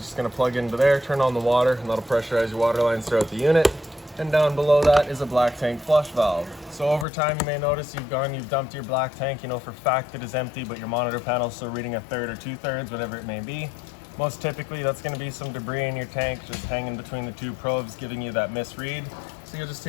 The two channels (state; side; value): drops out; right; at 7.1 s